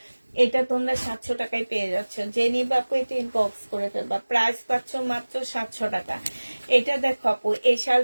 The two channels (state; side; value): inverted; both; correlation -1.00